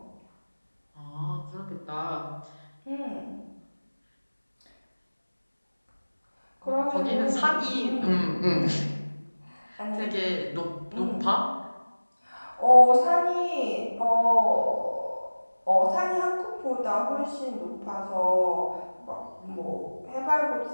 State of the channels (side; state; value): both; inverted; correlation -1.00